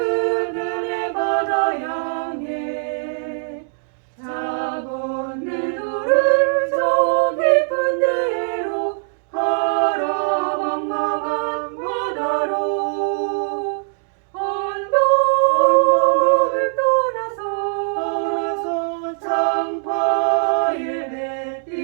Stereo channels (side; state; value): left; silent; digital silence